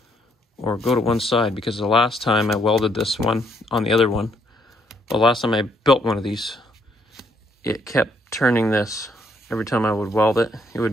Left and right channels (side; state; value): both; normal; correlation 0.70